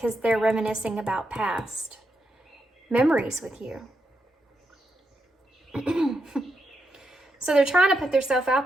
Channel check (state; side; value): normal; both; correlation 0.83